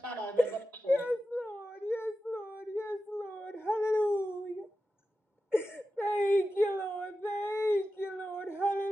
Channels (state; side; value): normal; both; correlation 0.92